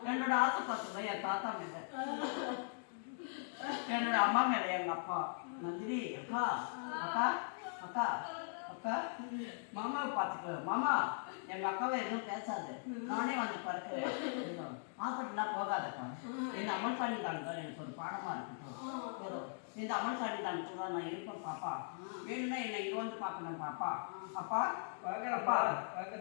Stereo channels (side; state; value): right; silent; digital silence